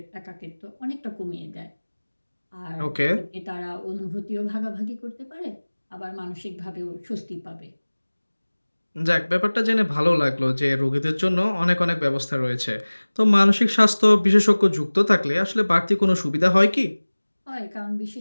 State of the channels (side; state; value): both; inverted; correlation -1.00